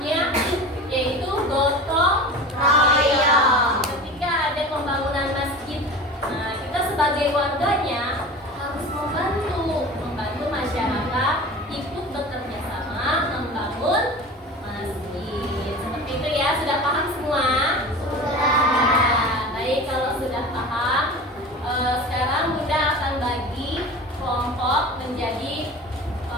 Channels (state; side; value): normal; both; correlation 0.35